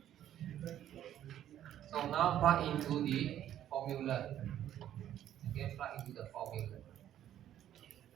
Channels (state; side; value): quieter; left; 11.4 dB